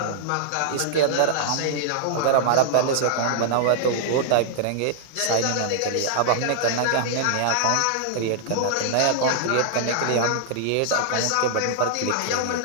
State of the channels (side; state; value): both; different; correlation -0.01